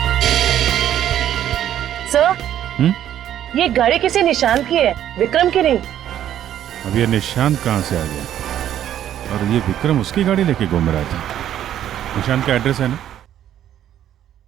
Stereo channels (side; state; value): left; quieter; 11.1 dB